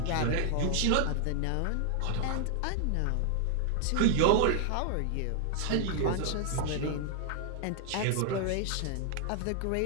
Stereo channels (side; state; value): both; different; correlation 0.00